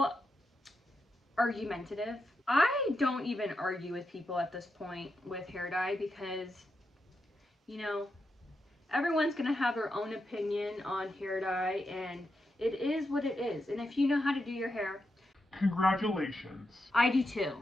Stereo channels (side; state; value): both; normal; correlation 0.86